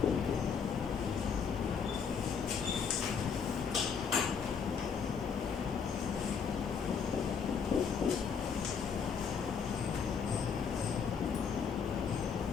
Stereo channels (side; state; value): right; quieter; 6.4 dB